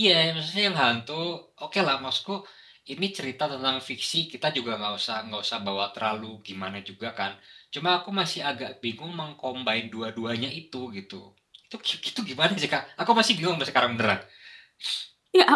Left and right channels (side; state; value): both; identical; correlation 1.00